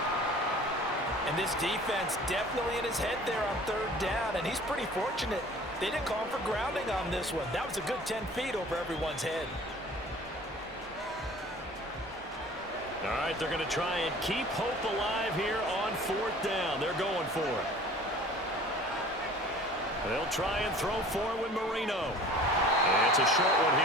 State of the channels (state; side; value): normal; both; correlation 0.46